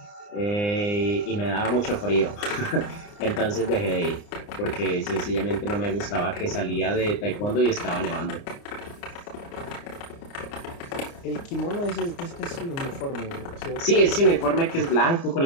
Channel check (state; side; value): late; right; 29 ms